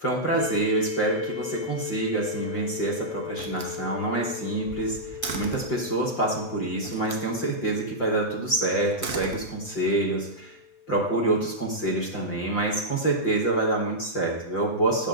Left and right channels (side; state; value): right; late; 8.1 ms